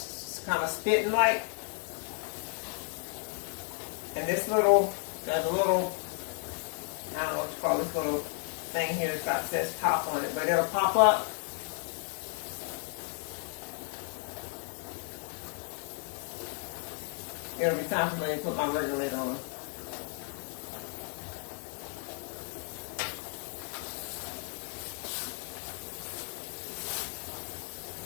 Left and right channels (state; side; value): quieter; right; 39.0 dB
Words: kind of spitting like, and this little, there's a little, I don't know what you call this little thing here, it's got says top on it, but it'll pop up. It'll be time for me to put my regulator on.